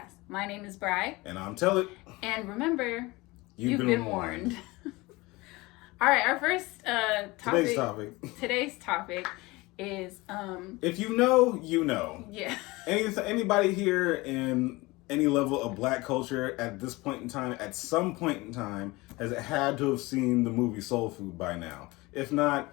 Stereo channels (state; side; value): quieter; right; 22.2 dB